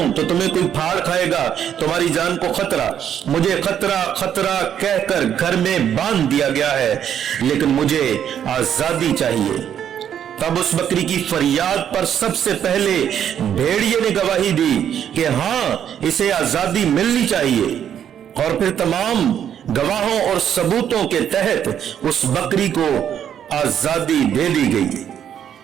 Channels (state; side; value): quieter; left; 9.3 dB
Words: तो तुम्हें कोई फाड़ खाएगा, तुम्हारी जान को खतरा। मुझे खतरा खतरा कहकर घर में बांध दिया गया है, लेकिन मुझे आजादी चाहिए। तब उस बकरी की फरियाद पर सबसे पहले भेड़िए ने गवाही दी कि हां, इसे आजादी मिलनी चाहिए। और फिर तमाम गवाहों और सबूतों के तहत उस बकरी को आजादी दे दी